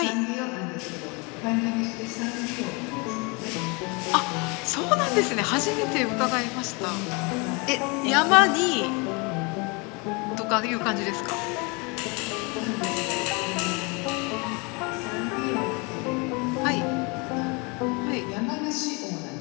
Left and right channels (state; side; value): quieter; right; 29.7 dB